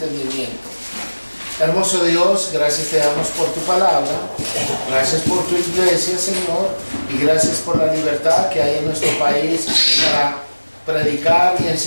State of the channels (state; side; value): inverted; both; correlation -1.00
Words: Hermoso Dios, gracias te damos por tu palabra, gracias por tu iglesia, Señor, y gracias por la libertad que hay en nuestro país para predicar y